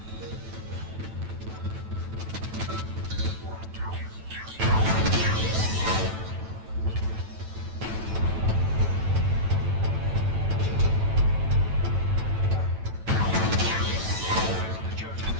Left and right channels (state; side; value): late; left; 9.1 ms